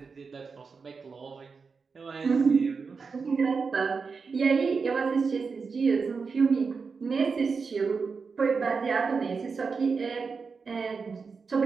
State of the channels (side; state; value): left; quieter; 5.0 dB